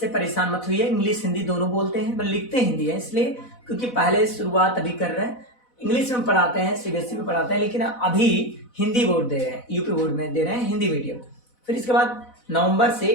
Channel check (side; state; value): right; late; 4.0 ms